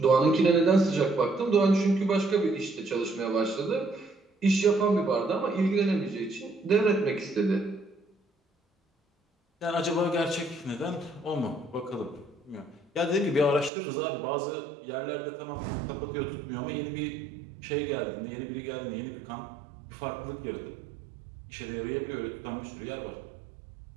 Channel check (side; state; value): left; drops out; at 13.7 s